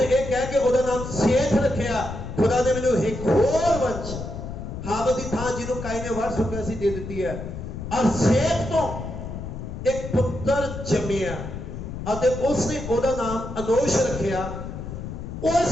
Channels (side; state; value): left; noise; rumble, 8 dB below the sound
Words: ਇਹ ਕਹਿ ਕੇ ਉਹਦਾ ਨਾਮ ਸੇਤ ਰੱਖਿਆ। ਖੁਦਾ ਨੇ ਮੈਨੂੰ ਇੱਕ ਹੋਰ ਵੰਸ਼ ਹਾਬਲ ਦੀ ਥਾਂ ਜਿਹਨੂੰ ਕਾਇਨ ਨੇ ਵੜ ਚੁੱਕਿਆ ਸੀ ਦੇ ਦਿੱਤੀ ਹੈ। ਔਰ ਸੇਤ ਤੋਂ ਇੱਕ ਪੁੱਤਰ ਜੰਮਿਆ ਅਤੇ ਉਸਨੇ ਉਹਦਾ ਨਾਮ ਅਨੋਸ਼ ਰੱਖਿਆ।